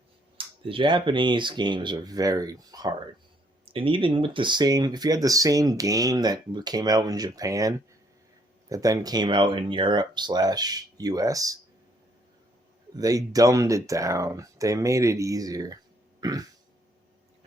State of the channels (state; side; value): normal; both; correlation 0.68